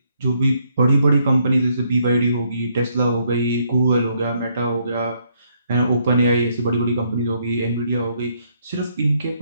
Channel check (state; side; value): inverted; both; correlation -0.72